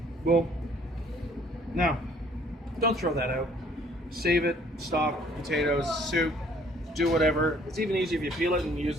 boom. Now, don't throw that out. Save it, stock, potatoes, soup, do whatever. It's even easier if you peel it and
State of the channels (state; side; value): normal; both; correlation 0.59